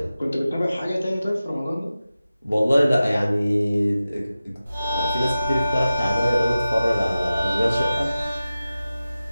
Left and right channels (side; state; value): both; inverted; correlation -0.95